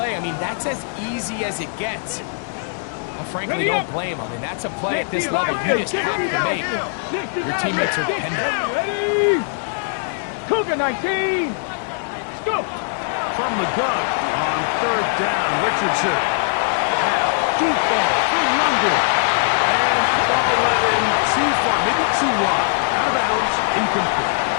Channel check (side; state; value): right; silent; digital silence